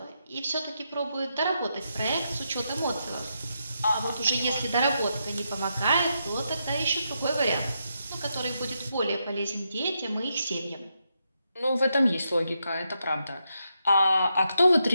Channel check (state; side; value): inverted; both; correlation -0.83